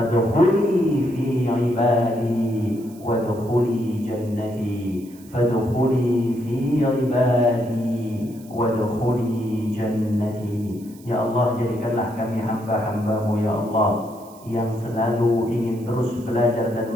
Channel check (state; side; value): noise; right; hiss, 24 dB below the sound